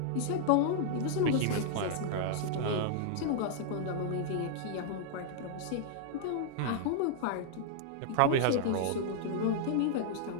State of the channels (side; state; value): both; different; correlation -0.01